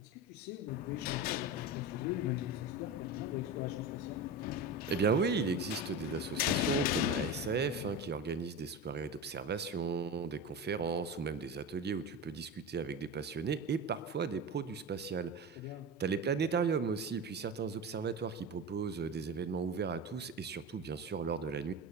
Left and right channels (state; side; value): normal; both; correlation 0.25